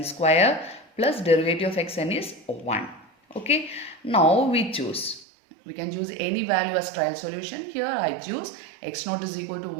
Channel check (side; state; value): left; drops out; at 5.2 s